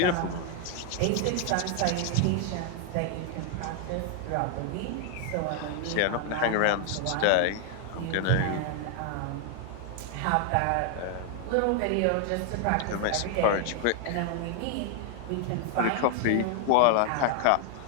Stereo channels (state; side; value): different; both; correlation 0.00